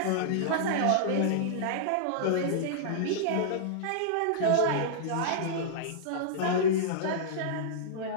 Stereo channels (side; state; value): both; different; correlation -0.02